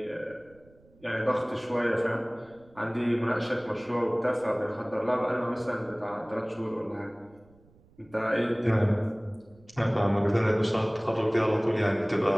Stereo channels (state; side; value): noise; right; rumble, 29 dB below the sound